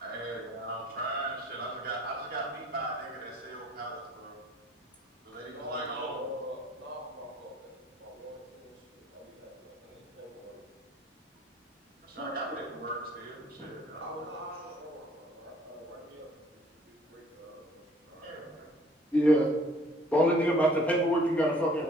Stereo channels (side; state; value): both; normal; correlation 0.56